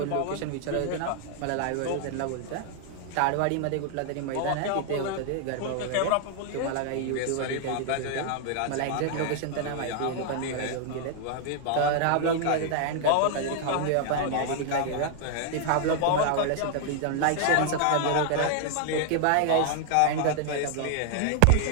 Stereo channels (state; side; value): different; both; correlation 0.00